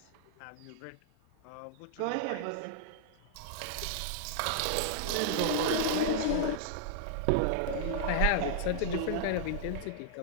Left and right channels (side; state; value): both; different; correlation -0.01